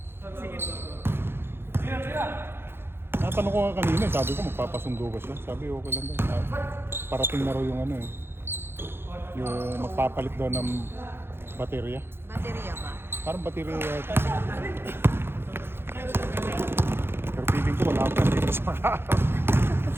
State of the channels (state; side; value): late; left; 0.11 ms